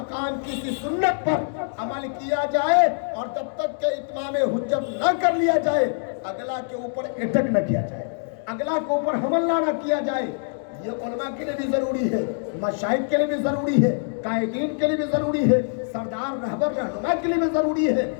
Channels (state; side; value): silent; right; digital silence